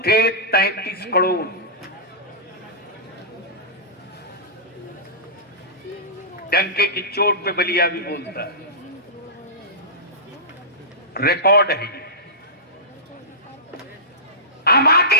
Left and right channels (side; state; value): both; normal; correlation -0.18